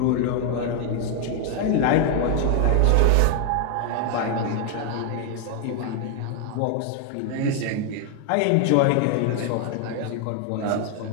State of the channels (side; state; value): both; different; correlation 0.00